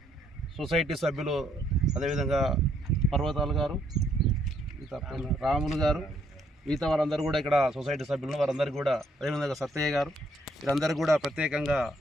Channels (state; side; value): normal; both; correlation 0.70